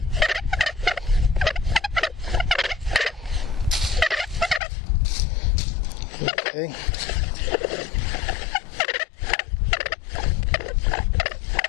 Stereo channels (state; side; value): drops out; right; at 4.6 s